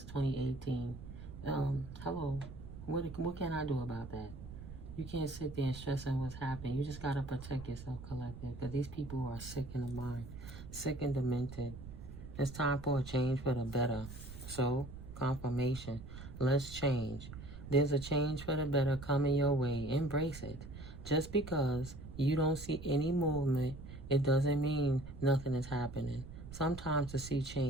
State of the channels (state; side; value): noise; right; rumble, 12 dB below the sound